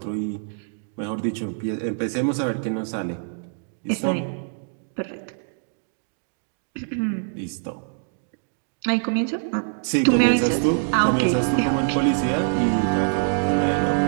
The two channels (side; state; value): left; silent; digital silence